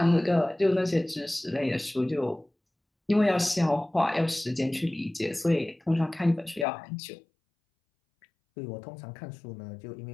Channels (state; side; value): drops out; right; at 6.7 s